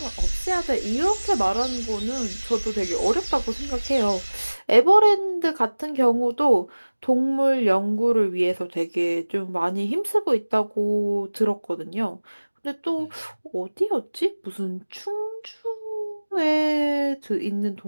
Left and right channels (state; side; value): inverted; both; correlation -1.00